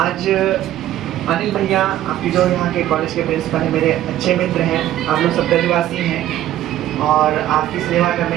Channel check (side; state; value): left; quieter; 13.2 dB